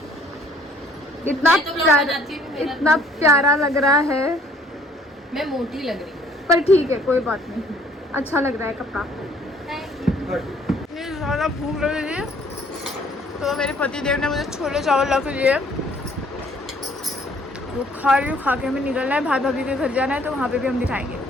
इतना प्यारा लग रहा है। मैं मोटी लग रही हूँ पर ठीक है, कोई बात नहीं, अच्छा लग रहा है कपड़ा। इतनी ज़्यादा भूख लग रही है तो मेरे पति देव ने मुझे छोले चावल ला के दिए। वो खा रही हूँ। खा के हमें निकलना है, भाई भाभी के घर जाना है, तो वहाँ पे भी हम दिखाएंगे।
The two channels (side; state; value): both; normal; correlation 0.59